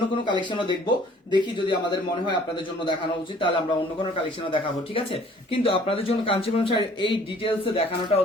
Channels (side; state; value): both; normal; correlation 0.55